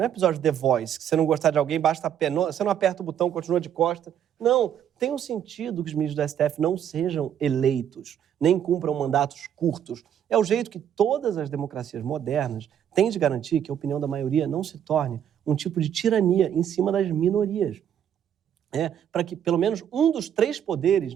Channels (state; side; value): quieter; left; 9.5 dB